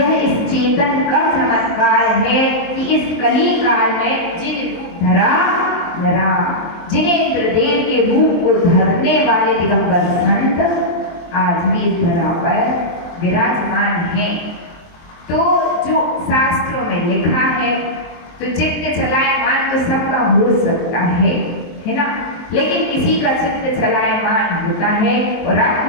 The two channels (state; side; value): late; right; 23 ms